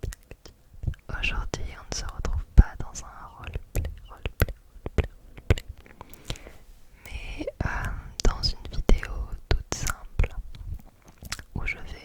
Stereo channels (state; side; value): identical; both; correlation 1.00